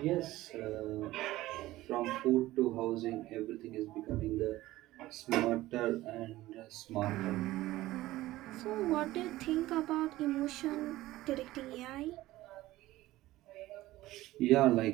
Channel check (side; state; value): left; quieter; 16.7 dB